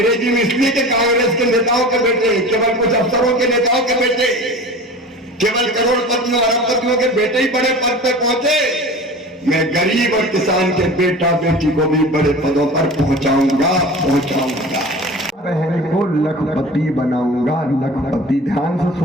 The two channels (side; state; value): both; normal; correlation 0.37